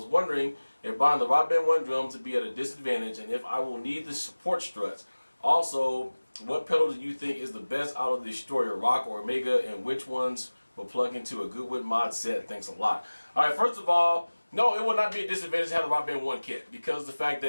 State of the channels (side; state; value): both; inverted; correlation -1.00